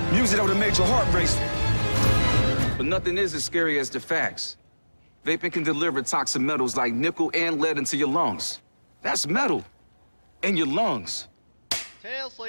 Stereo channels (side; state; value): both; inverted; correlation -1.00